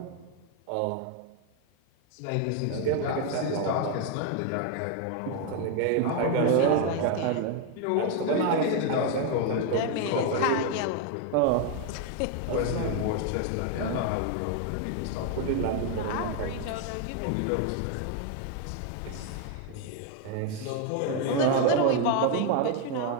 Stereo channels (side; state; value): both; different; correlation 0.01